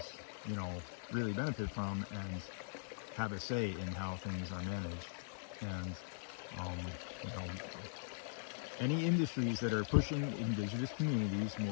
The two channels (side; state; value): right; silent; digital silence